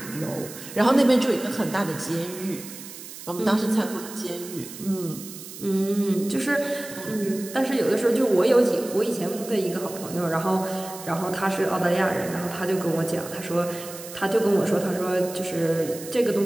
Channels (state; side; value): noise; right; hiss, 13 dB below the sound